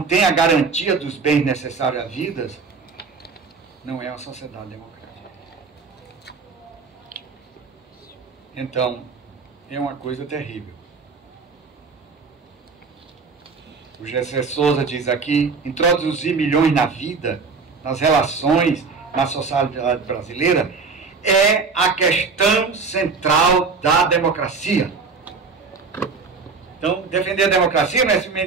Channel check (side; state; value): left; quieter; 4.7 dB